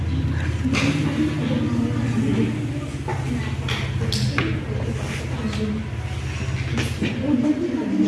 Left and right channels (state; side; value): identical; both; correlation 1.00